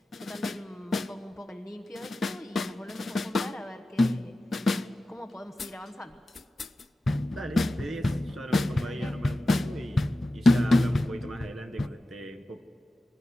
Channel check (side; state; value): both; normal; correlation 0.94